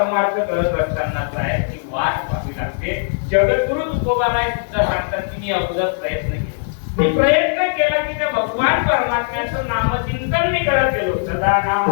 करत असतानाचा आहे की वाट पाहावी लागते. जगद्गुरु तुकोबाराय सुद्धा सांगतात की मी अगोदर प्रयत्न केला, मी प्रयत्न केला की त्या भगवान परमात्म्याचं नामचिंतन मी करत गेलो. सदा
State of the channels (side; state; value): right; silent; digital silence